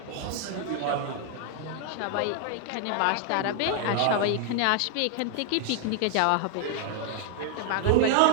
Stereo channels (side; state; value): both; different; correlation 0.00